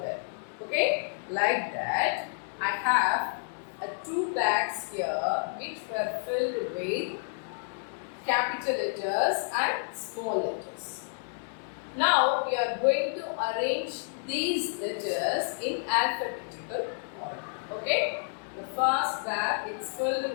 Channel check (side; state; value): right; silent; 58 dB below the other